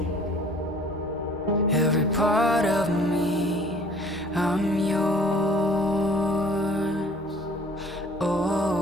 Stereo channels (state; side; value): normal; both; correlation 0.52